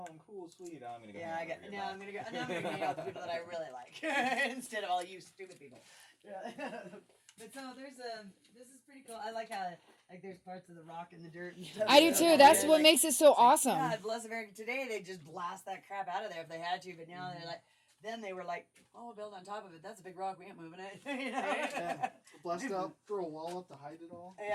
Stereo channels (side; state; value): both; identical; correlation 1.00